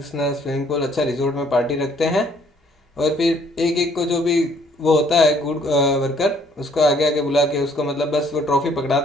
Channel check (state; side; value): normal; both; correlation 0.62